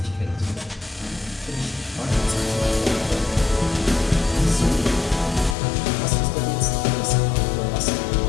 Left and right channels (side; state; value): right; drops out; at 5.6 s